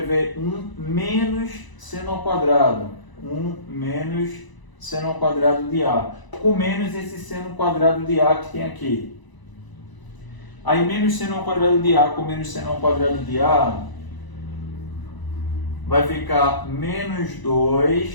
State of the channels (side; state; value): right; late; 1.0 ms